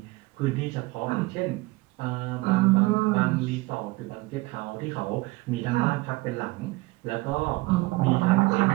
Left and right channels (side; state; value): left; quieter; 22.1 dB